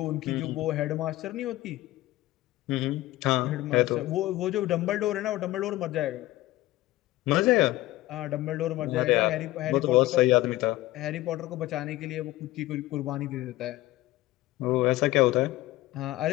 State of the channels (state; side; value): quieter; right; 17.0 dB